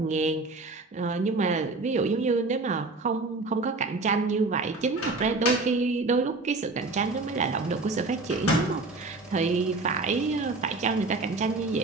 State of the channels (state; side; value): quieter; left; 3.4 dB